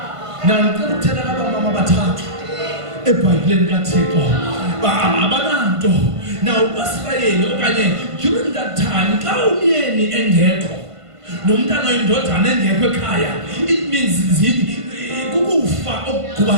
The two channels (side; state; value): left; late; 1.5 ms